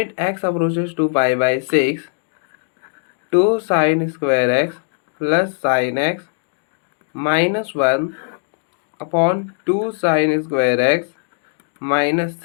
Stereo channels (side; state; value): right; silent; digital silence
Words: X approaches to pi by 6 2 sine square X plus sine X minus 1 upon 2 sine square X minus